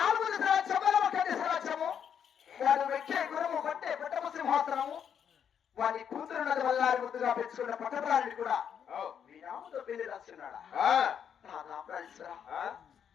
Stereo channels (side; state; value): right; quieter; 8.2 dB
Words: దశల చెబలమ కంటి సరాచము వాడు వెక్కే గురము పట్టే పట్టపు సింహాసనము వాడి కూతురున్నది వల్లారి ముద్దుగా పెంచుకున్న పట్టపురాణిని కూడా విరామతో పెళ్లి రాస్తున్నాడా? నాథ ప్రాణేశ్వరా,